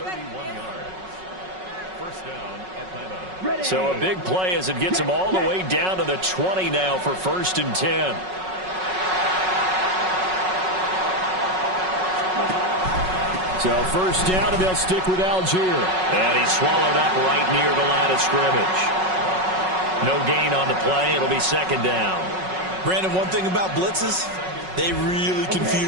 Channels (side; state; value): left; late; 5.4 ms